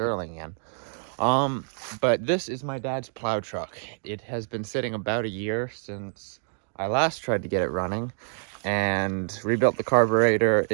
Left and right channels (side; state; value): left; silent; digital silence